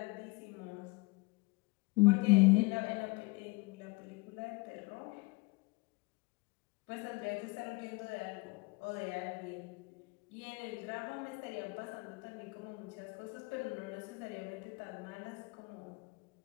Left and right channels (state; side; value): quieter; right; 25.6 dB